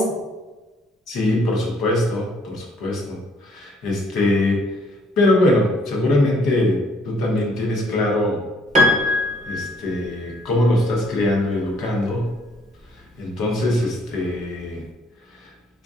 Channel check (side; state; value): both; normal; correlation 0.64